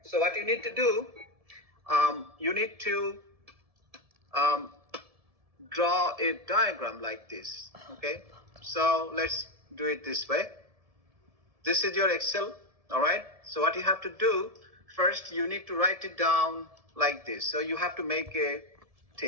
So what you need to do, you need to draw a diagram like this. Okay. So let's do it this way. This is your Excel. All right. So what you have to do, first you need to write it down like this. So you have to make a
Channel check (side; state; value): left; late; 1.7 ms